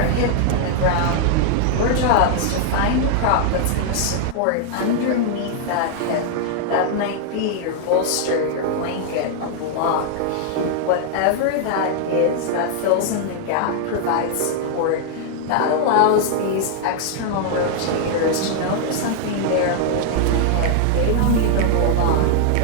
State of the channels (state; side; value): different; both; correlation 0.00